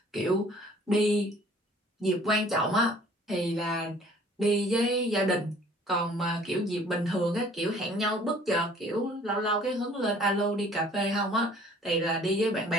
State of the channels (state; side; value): normal; both; correlation 0.54